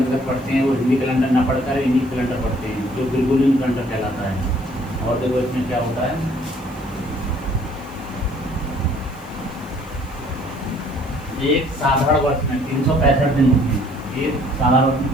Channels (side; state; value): left; noise; hiss, 29 dB below the sound